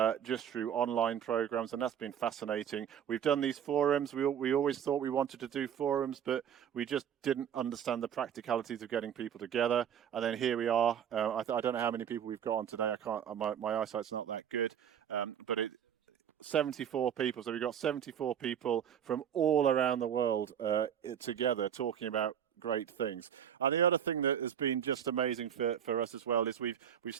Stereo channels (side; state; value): left; quieter; 9.0 dB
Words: just through online programs, and that's been fascinating. We've done these forums. We always thought we wanted to do forums, but we just didn't understand the practicalities of getting people together. And then here we are. I don't know how many people we've got on today. I can't. My eyesight's not that good, but 74 people. So we've got 74 people from all around the world together talking about great things. And the other thing that has been just amazing for us as well is we've